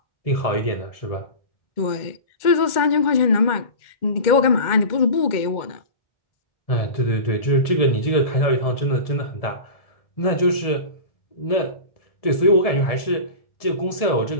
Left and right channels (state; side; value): late; right; 1.7 ms